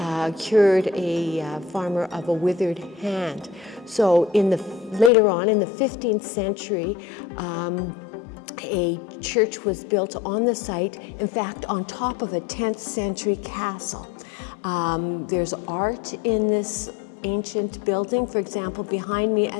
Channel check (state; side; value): drops out; right; at 5.1 s